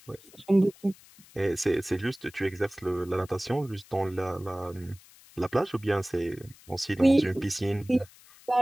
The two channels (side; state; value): left; noise; hiss, 24 dB below the sound